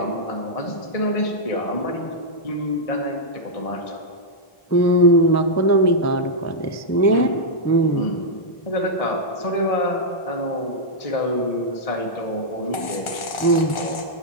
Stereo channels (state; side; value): late; right; 1.4 ms